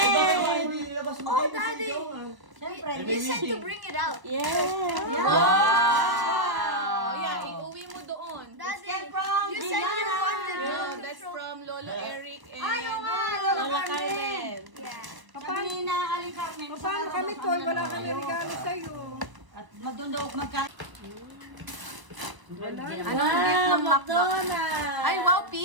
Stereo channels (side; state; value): left; late; 1.0 ms